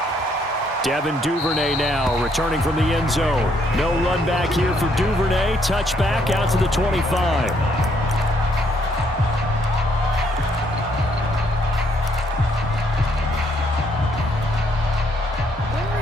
Devin Duvernay now returning from the end zone. No run back here for Duvernay. Touchback out to the 25.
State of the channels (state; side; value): normal; both; correlation 0.70